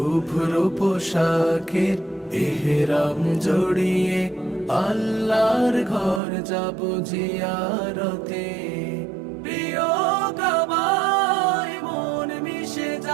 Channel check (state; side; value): drops out; left; at 6.2 s